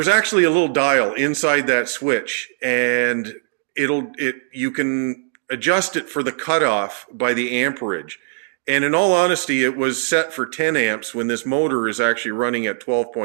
actually a little dial inside that switch, and you can adjust it for the cutoff by the amperage. And in all honesty, it was set for 10 amps when this motor is actually running at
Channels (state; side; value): silent; left; digital silence